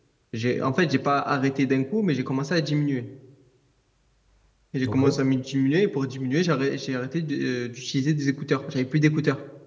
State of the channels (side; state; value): both; identical; correlation 1.00